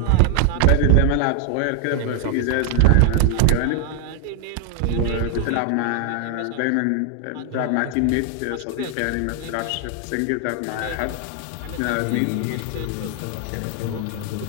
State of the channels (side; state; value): both; different; correlation 0.00